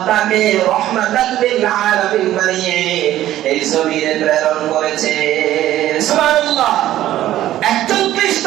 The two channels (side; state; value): left; quieter; 13.5 dB